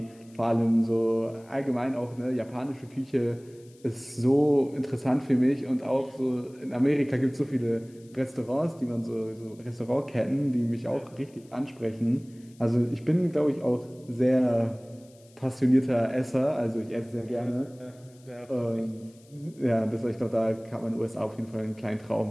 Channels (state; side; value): noise; left; hiss, 29 dB below the sound